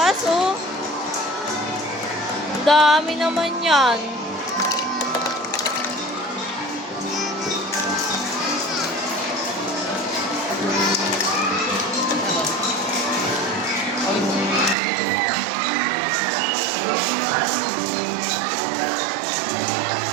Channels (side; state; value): left; drops out; at 14.8 s